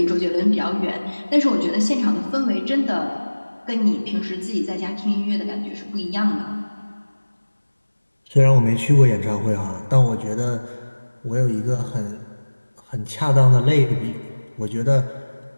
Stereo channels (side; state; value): both; inverted; correlation -1.00